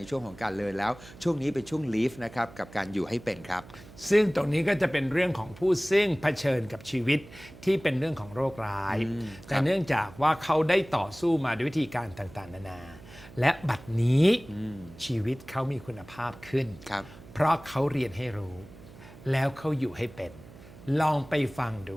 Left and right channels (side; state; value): right; noise; hum, 19 dB below the sound